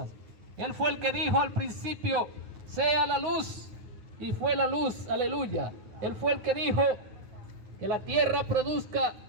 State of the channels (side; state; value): left; late; 9.4 ms